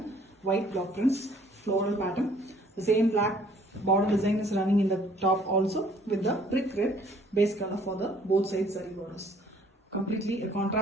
white block prints, floral pattern. The same black border design is running in the top also with the brick red base color for the both sides saree borders. Completely a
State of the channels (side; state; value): both; normal; correlation 0.59